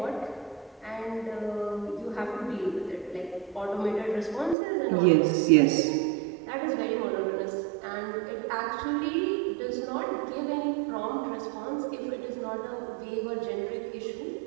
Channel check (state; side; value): drops out; left; at 4.5 s